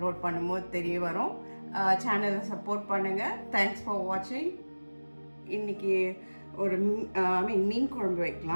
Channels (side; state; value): both; inverted; correlation -1.00